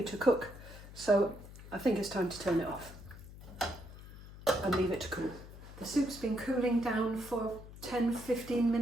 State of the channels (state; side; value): noise; left; hum, 16 dB below the sound